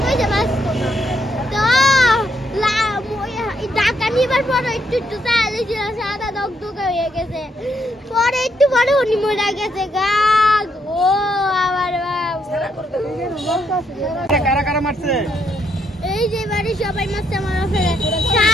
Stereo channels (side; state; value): both; normal; correlation 0.75